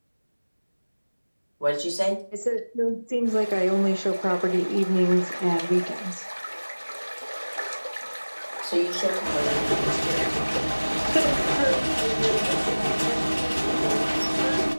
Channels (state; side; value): inverted; both; correlation -1.00